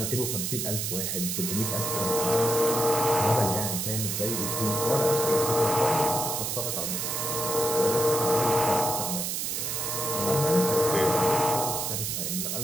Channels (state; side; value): noise; right; hiss, 2 dB below the sound